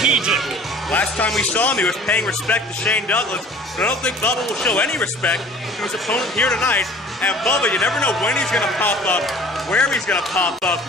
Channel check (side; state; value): both; normal; correlation 0.47